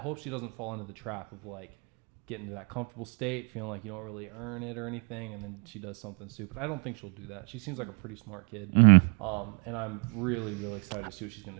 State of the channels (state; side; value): quieter; left; 37.4 dB